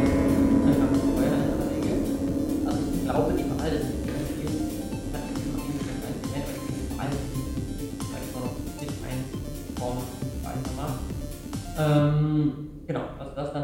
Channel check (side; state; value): both; identical; correlation 1.00